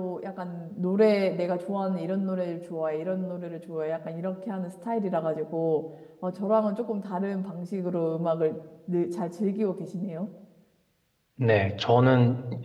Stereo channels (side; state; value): both; identical; correlation 1.00